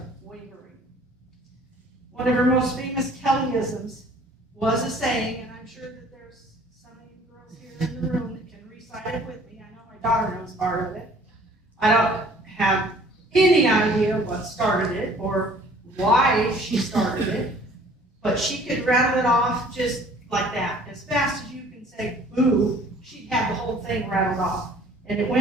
wavering. One of her most famous Kellyisms was a saying, and I'm sure that there's some of you girls here in the room that can recite it with me. I know my daughter knows part of it. I don't have any idea what started it or why she started it, but she could rattle it off just like that. As fast as you can say boo, she'd have the whole thing rattled off. And it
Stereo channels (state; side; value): normal; both; correlation 0.53